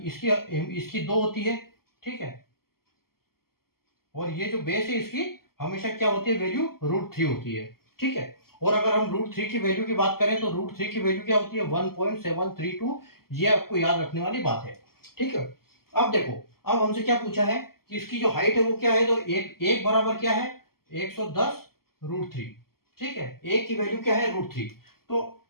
इसकी 2 होती है, ठीक है। और ये जो बेस है इसकी हमेशा क्या होती है, वैल्यू √3 होती है, ठीक है। और अगर हम √3 की वैल्यू की बात करें तो √3 की वैल्यू क्या होती है, 1.732। ये आपको याद रखने वाली बात है, ठीक है। अब देखो, अब हमसे क्या पूछा है कि इसकी जो हाइट है वो क्या है, तो एक बराबर क्या है 110√3, ठीक है। एक की वैल्यू क्या है √3। तो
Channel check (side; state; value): right; late; 0.93 ms